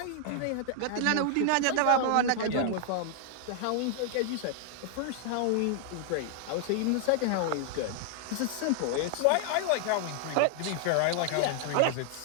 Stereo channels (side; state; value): both; different; correlation -0.01